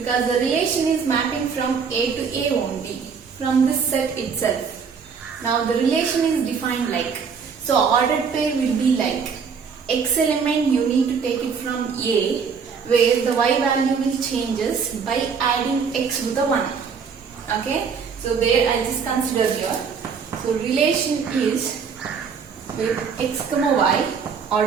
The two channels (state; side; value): quieter; left; 6.0 dB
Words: the relation is mapping from A to A only from this set itself. Now the relation is defined like, so ordered pair will be like x element you need to take it from A, where the y value will changes by adding x with the 1. Okay, so there I just consider here. So relation is with x comma y